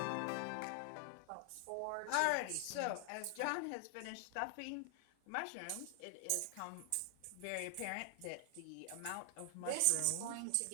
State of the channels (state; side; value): different; both; correlation 0.00